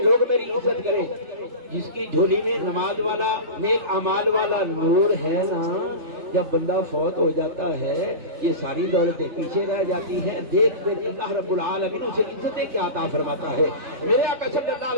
لوگ میری عزت کریں۔ جس کی جھولی میں نماز والا نیک اعمال والا نور ہے نا، جب بندہ فوت ہو جاتا ہے یہ ساری دولتیں پیچھے رہ جاتی ہیں۔ دیکھ کر اللہ رب العالمین اسے عزتیں کیا عطا فرماتا ہے۔ میرے آقا صلی اللہ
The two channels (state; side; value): late; left; 3.3 ms